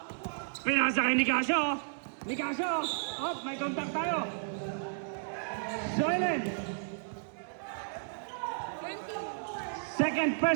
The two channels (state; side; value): silent; left; digital silence